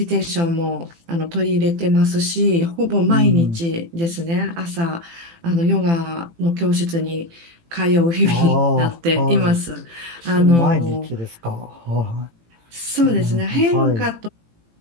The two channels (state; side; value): late; left; 18 ms